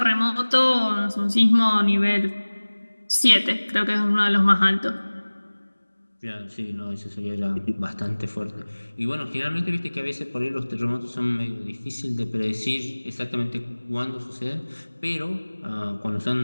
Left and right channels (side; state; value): both; inverted; correlation -1.00